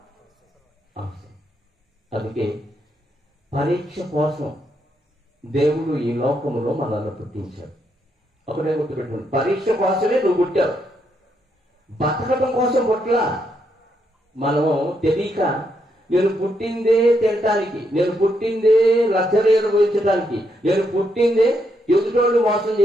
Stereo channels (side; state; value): both; normal; correlation 0.78